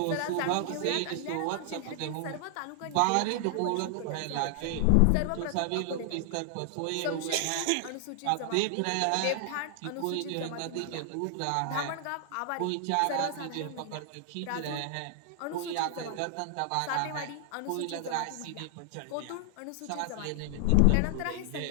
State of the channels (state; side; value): different; both; correlation 0.00